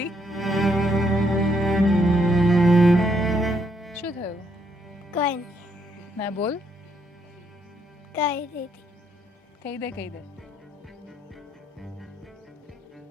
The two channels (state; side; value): normal; both; correlation 0.73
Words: શું થયું? કોઈ નહીં, ના બોલ. કઈ રીતે કહી દે કહી દે.